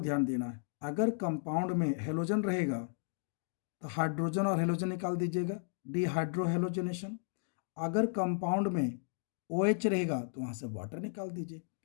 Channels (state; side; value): silent; right; digital silence